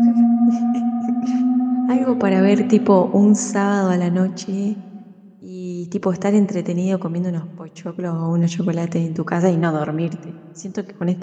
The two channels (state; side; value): identical; both; correlation 1.00